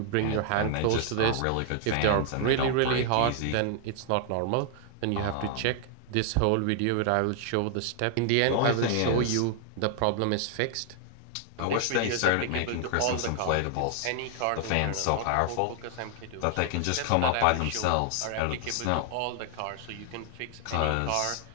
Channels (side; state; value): both; different; correlation 0.00